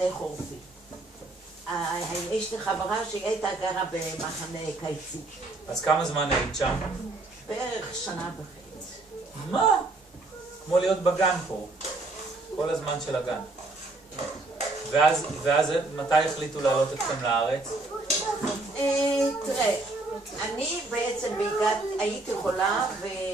חורפי. יש לי חברה שהיא הייתה גרה במחנה קיצי. אז כמה זמן היית שם? בערך שנה וחצי. מה? כמו להיות בגן פה. כל הזמן של הגן. ואז מתי החליטו לעלות אתכם לארץ? תראה, אני בעצם הייתי חולה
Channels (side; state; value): left; quieter; 3.1 dB